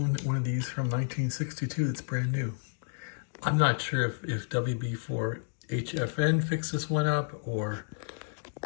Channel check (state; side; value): silent; right; digital silence